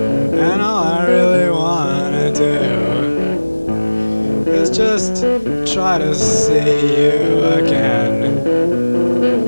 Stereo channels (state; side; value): inverted; both; correlation -1.00